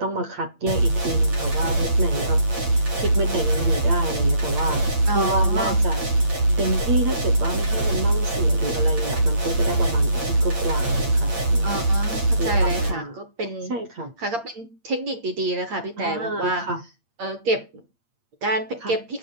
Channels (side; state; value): left; late; 8.7 ms